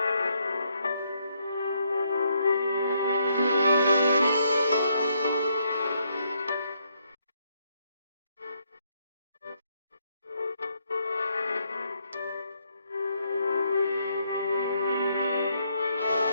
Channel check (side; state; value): both; inverted; correlation -0.73